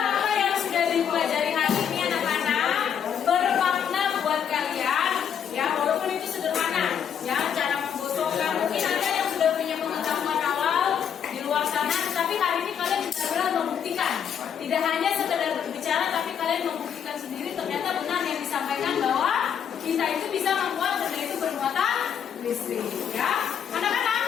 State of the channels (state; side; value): quieter; right; 8.2 dB